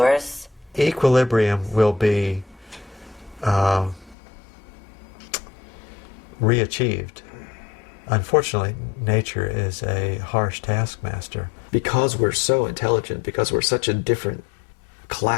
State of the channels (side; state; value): right; drops out; at 4.2 s